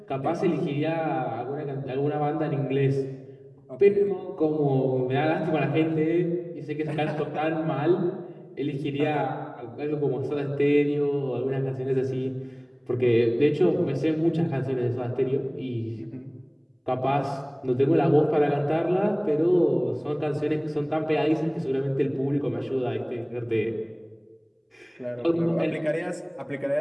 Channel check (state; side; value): identical; both; correlation 1.00